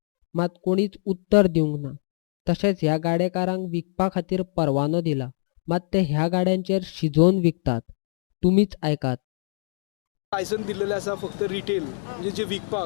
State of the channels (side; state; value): right; silent; digital silence